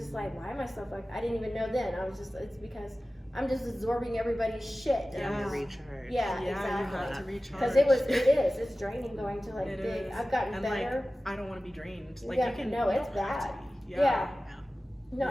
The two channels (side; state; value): both; normal; correlation 0.96